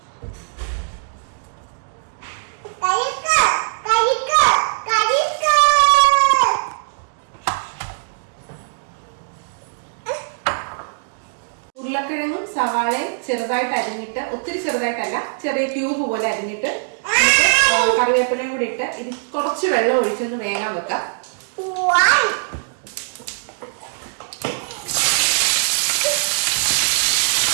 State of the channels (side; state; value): left; silent; digital silence